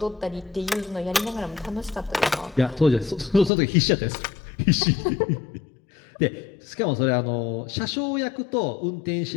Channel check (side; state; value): right; drops out; at 3.5 s